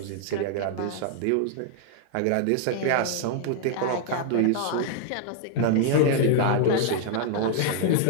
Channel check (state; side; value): different; both; correlation -0.01